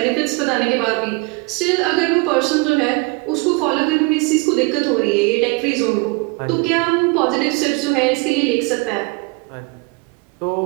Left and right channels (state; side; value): quieter; left; 27.5 dB